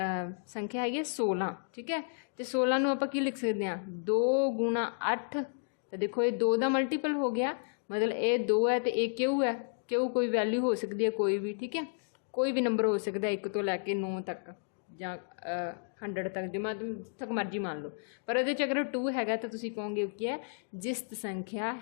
ਸੰਖਿਆ ਹੈਗੀ 16। ਠੀਕ ਹੈ। ਅਤੇ 16 ਨੂੰ ਆਪਾਂ ਕੀ ਲਿਖ ਸਕਦੇ ਹਾਂ, 2 × 8 तो देखो ये 2 का मल्टीपल हो गया, मतलब ये 2 है तो ये क्यू है, क्यू कोई वैल्यू हो सकती है कोई भी, ठीक है, कोई भी नंबर हो सकता है 1 तो लैके 9 तक ਜਾਂ 100 तक, जो तक मर्जी मान लो। पर ये अगर 2 है तो तुम कहोगे की है जिस्त संख्या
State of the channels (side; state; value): right; silent; digital silence